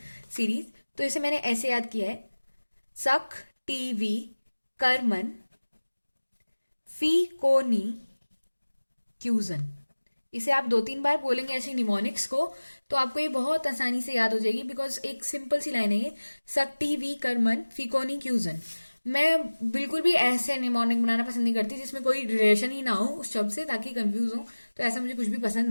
सीरीज। तो इसे मैंने ऐसे याद किया है, सक टीवी कर्मन फी कोनी क्यूजन। इसे आप 2-3 बार बोलेंगे ऐसे निमोनिक्स को, तो आपको ये बहुत आसानी से याद हो जाएगी, बिकॉज एक सिंपल सी लाइन है ये, सक्टी वी कर्मन फिकोनी क्यूजन। मैं बिल्कुल भी ऐसे निमोनिक बनाना पसंद नहीं करती जिसमें कोई रिलेशन ही ना हो उस शब्द से, ताकि कंफ्यूज हो। तो ऐसा मुझे कुछ भी पसंद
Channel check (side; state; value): both; inverted; correlation -1.00